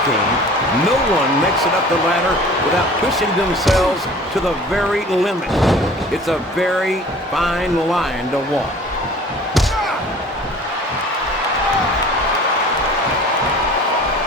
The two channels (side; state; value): both; normal; correlation 0.46